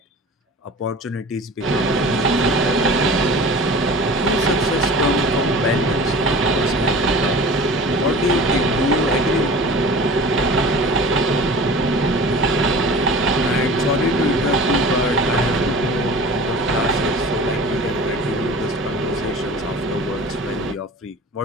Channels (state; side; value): normal; both; correlation 0.39